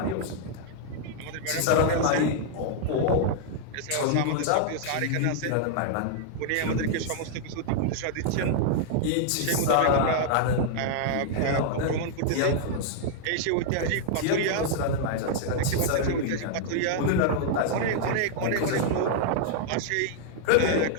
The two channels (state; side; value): different; both; correlation -0.01